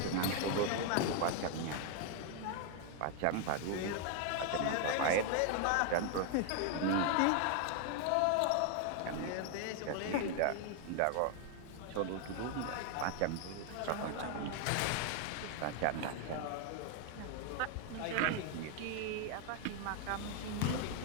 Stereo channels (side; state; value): both; different; correlation 0.00